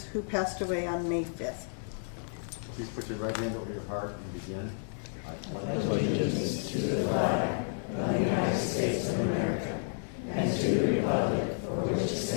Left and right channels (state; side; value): silent; right; 57 dB below the other